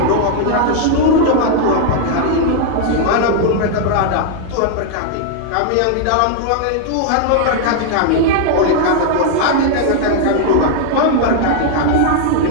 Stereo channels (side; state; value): both; different; correlation 0.00